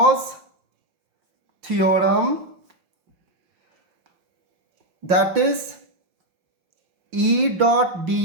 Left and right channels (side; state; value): left; late; 5.8 ms